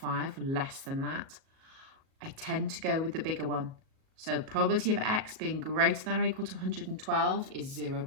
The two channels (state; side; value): late; left; 37 ms